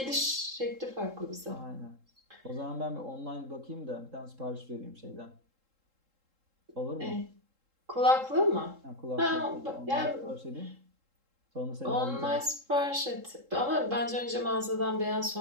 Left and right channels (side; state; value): left; late; 3.7 ms